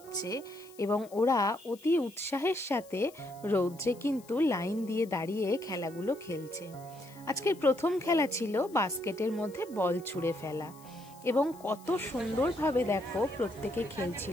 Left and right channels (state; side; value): noise; left; hiss, 24 dB below the sound